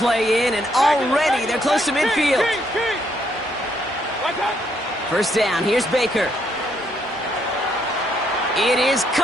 in, and already they're close to midfield. 1st down, here's Baker. It is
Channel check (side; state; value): both; normal; correlation 0.73